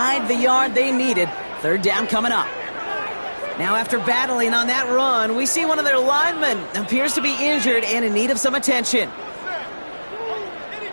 the yard they needed. Third down coming up. Now, after battling on that run, we see one of their linemen appears to be injured and in need of some attention.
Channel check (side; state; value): both; inverted; correlation -1.00